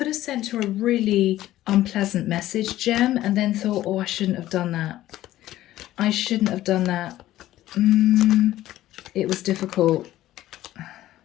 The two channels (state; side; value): quieter; right; 14.5 dB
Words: have sent her a really unpleasant message, Gem, and then thought, oh, I shouldn't have done that. I shouldn't have done that. It was difficult.